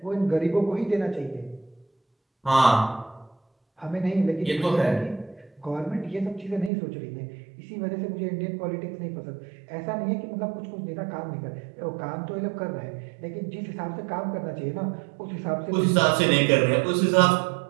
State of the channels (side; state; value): left; drops out; at 6.7 s